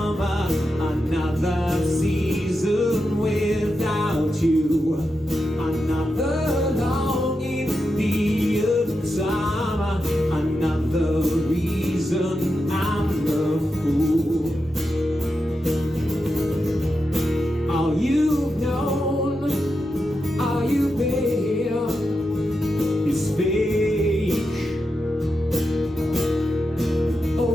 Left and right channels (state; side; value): normal; both; correlation 0.88